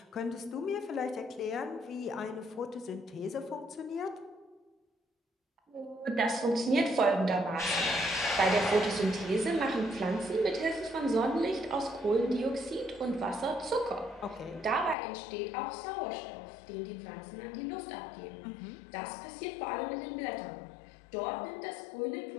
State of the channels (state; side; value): drops out; right; at 15.0 s